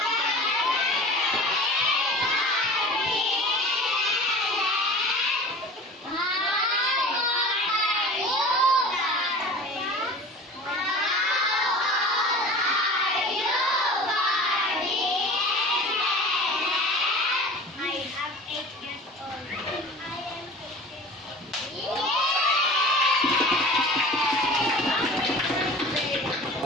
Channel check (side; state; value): both; normal; correlation 0.39